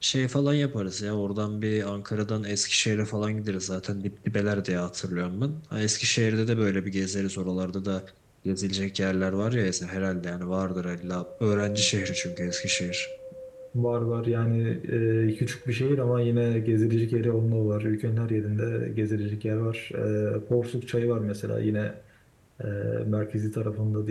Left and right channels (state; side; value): identical; both; correlation 1.00